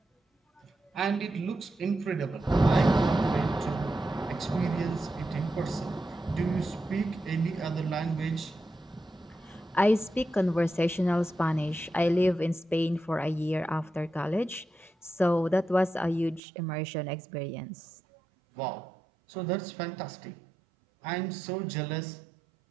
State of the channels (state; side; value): drops out; left; at 16.4 s